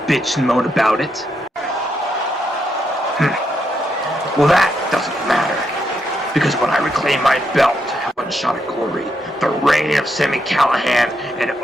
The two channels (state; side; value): normal; both; correlation 0.80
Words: bitch and moan about it. Well, that doesn't matter, because when I reclaim my belt at One Shot of Glory, the reign of Sami Callahan and